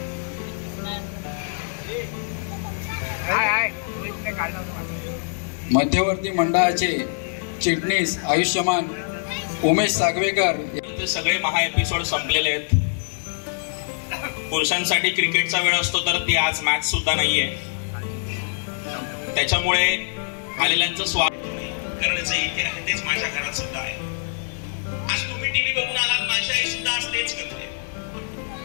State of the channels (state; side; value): silent; right; digital silence